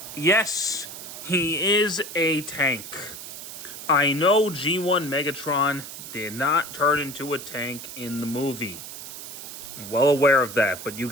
Yes, he is a tank. I know G1 Megatron did not turn into a tank in the movie. I'm well aware of that, but you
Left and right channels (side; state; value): right; noise; hiss, 11 dB below the sound